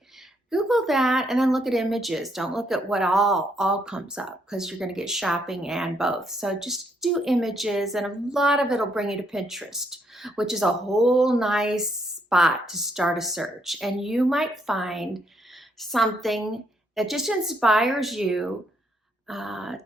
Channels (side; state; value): both; normal; correlation 0.73